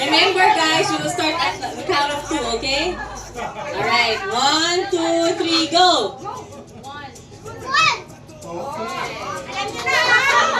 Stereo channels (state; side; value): identical; both; correlation 1.00